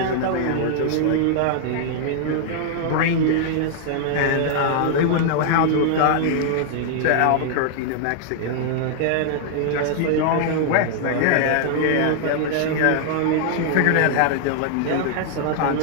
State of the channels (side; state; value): both; different; correlation -0.01